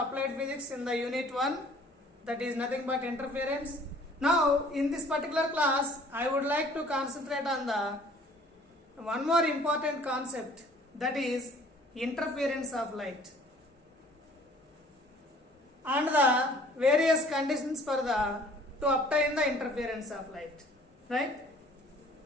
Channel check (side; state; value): both; normal; correlation 0.54